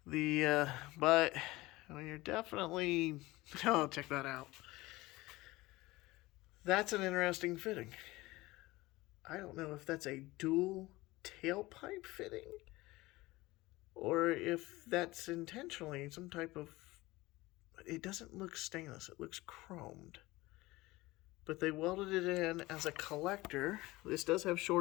But you're definitely, oh, check that out. That's an interesting fitting. I don't know if that's a dual tailpipe fitting or if that's intentionally some type of, it doesn't look stainless, it looks chromed. But they welded it in as a collector. This does have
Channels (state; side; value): quieter; right; 19.9 dB